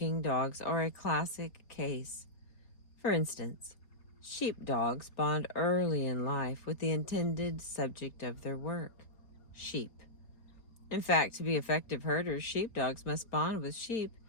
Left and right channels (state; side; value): late; right; 4.2 ms